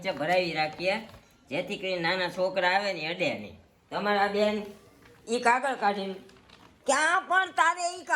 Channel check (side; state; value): both; identical; correlation 1.00